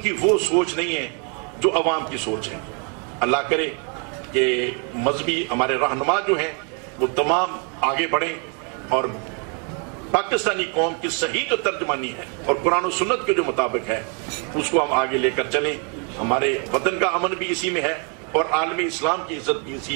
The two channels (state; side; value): quieter; left; 37.6 dB